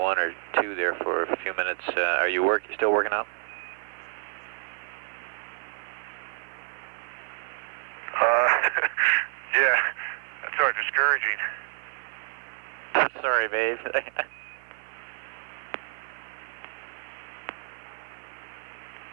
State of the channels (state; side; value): silent; left; 59 dB below the other